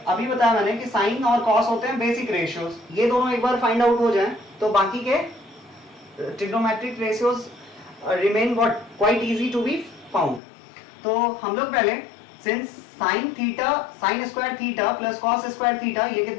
अभी बताया मैंने कि साइन और कॉस होते हैं बेसिक रेशियोज, ये दोनों एक बार फाइंड आउट हो जाएं तो बाकी के trigonometric ratios remain what quite easy to be found. तो हम लोग पहले since sine theta, sine square theta plus cos square theta, ये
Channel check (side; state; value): right; drops out; at 10.4 s